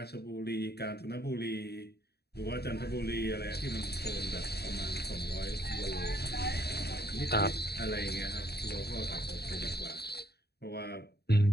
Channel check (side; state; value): right; late; 0.47 ms